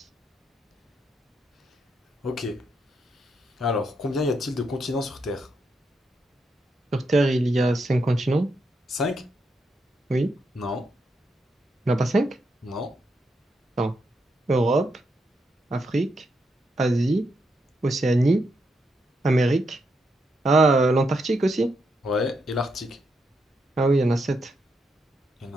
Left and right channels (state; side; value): normal; both; correlation 0.81